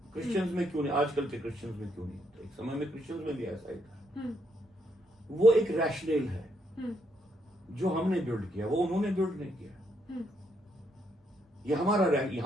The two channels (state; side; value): normal; both; correlation 0.75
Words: क्रिश्चियंस में क्यों नहीं, आजकल के क्रिश्चियंस में क्यों नहीं होता? एक समय में क्रिश्चियंस में भी ऐसा ही था। वो एक रैशनल है जो हमने बिल्ड किया, वो उन्होंने बिल्ड नहीं किया। ये